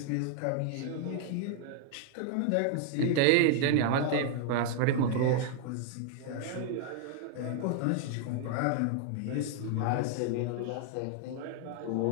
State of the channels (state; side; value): different; both; correlation 0.00